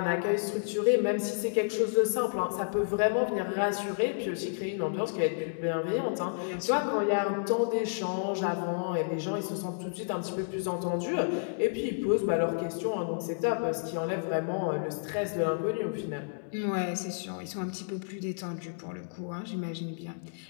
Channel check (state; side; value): silent; right; 57 dB below the other